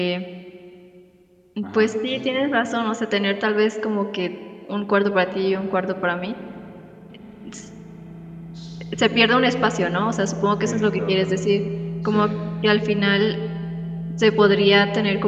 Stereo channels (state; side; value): identical; both; correlation 1.00